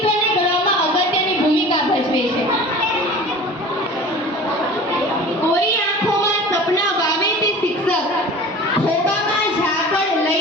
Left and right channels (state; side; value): normal; both; correlation 0.40